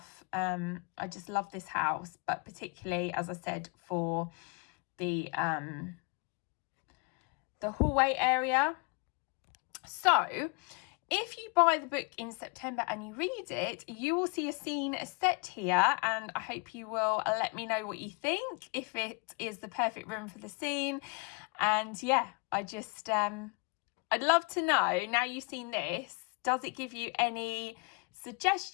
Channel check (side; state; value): right; quieter; 32.2 dB